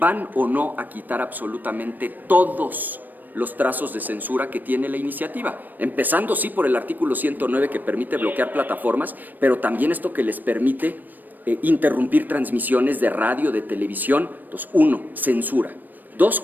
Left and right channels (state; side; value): late; left; 0.088 ms